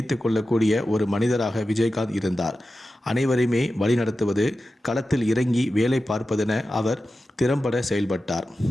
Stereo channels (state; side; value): normal; both; correlation 0.93